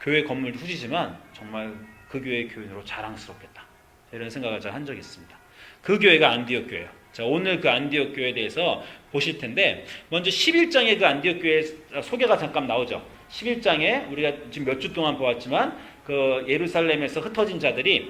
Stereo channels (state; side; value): identical; both; correlation 1.00